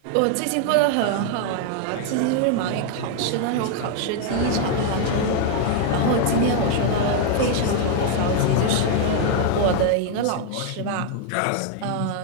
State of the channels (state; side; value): different; both; correlation 0.00